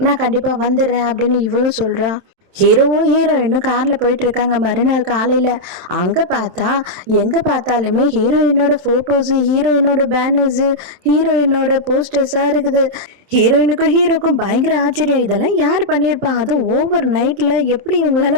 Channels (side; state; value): left; late; 27 ms